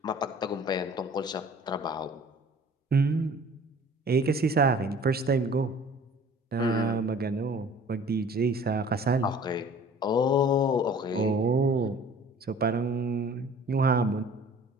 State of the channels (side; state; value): both; normal; correlation 0.48